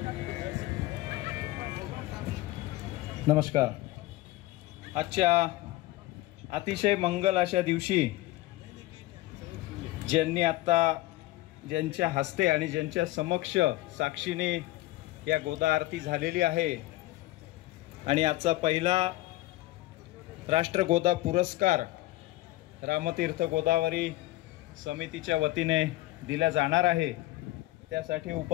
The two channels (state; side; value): quieter; right; 17.7 dB